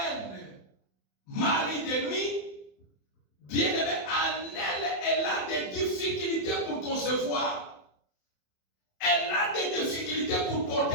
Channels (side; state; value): right; late; 27 ms